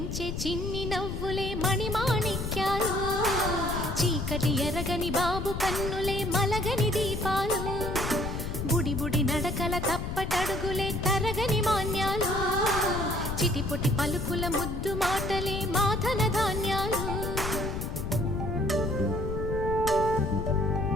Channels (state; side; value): noise; left; rumble, 4 dB below the sound